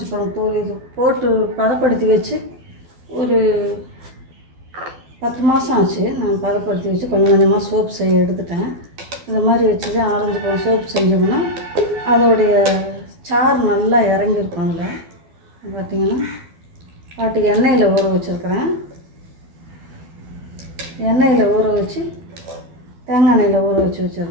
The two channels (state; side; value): late; left; 12 ms